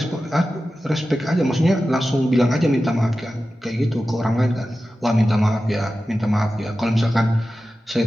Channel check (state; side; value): normal; both; correlation 0.93